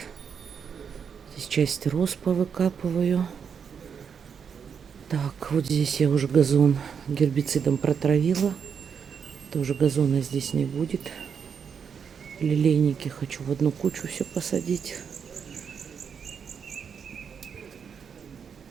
Здесь часть роз повыкапываю. Так, вот здесь я уже газон гербицидом протравила. Тоже газона здесь не будет. Лилейники хочу в одну кучу все посадить.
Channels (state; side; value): quieter; left; 6.9 dB